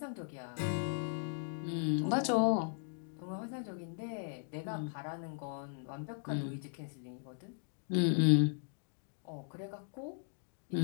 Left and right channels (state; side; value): silent; right; digital silence